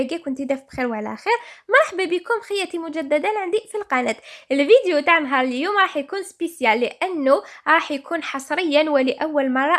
كنت داف بخير وعلى خير. مرحبا بكم خياتي مجددا عندي في القناه. الفيديو تاع نهار اليوم راح يكون سبيسيال لانه راح يكون حصريا ولاول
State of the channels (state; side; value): identical; both; correlation 1.00